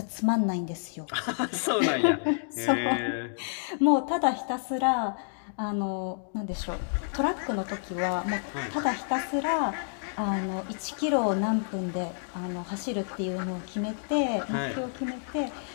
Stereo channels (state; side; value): silent; right; digital silence